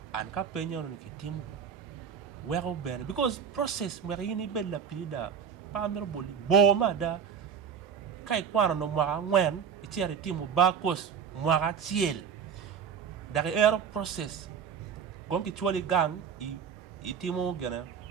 an ka penyo no ki timu wero bene because process mwere yini bella pilida pa mero boli bo mada kai kwano no mwaka ngwen itiere timu bakos mwaka chiel dari ero process gonki chwali gang i timu gena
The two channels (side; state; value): left; quieter; 7.3 dB